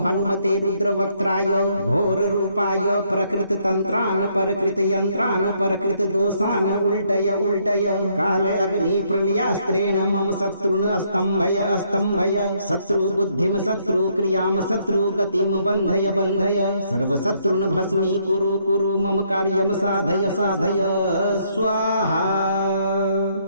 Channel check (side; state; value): both; inverted; correlation -0.70